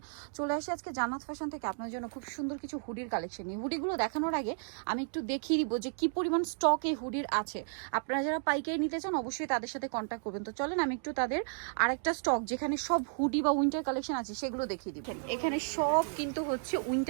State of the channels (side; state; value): left; silent; digital silence